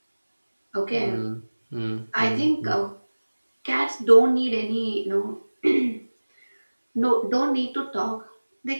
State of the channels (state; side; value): inverted; both; correlation -1.00